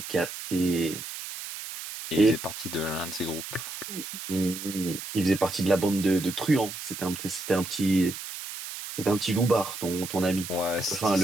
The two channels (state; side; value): noise; right; hiss, 9 dB below the sound